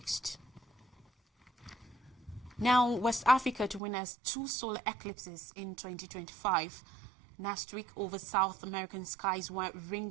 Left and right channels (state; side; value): drops out; left; at 3.8 s